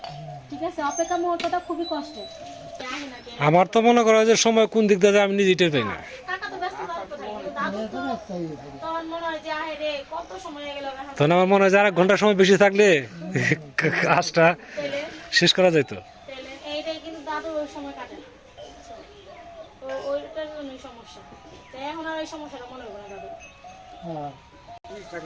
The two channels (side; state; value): both; identical; correlation 1.00